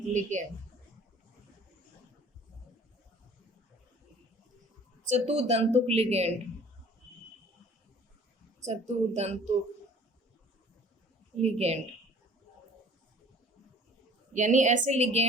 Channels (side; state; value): both; normal; correlation 0.50